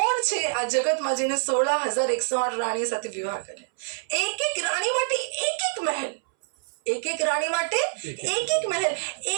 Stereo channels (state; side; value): silent; left; 61 dB below the other